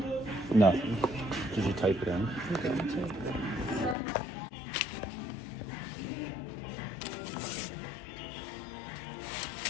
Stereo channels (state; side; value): drops out; right; at 4.0 s